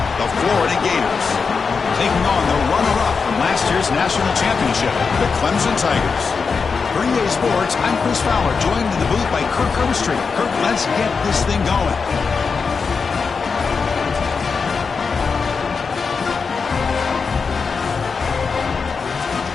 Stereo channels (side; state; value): right; quieter; 5.2 dB